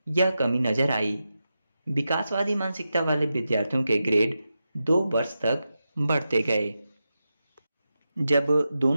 यह कमी नजर आई। विकासवादी मानसिकता वाले विद्यार्थियों के ग्रेड 2 वर्ष तक बढ़ते गए। जब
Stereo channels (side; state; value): both; inverted; correlation -0.90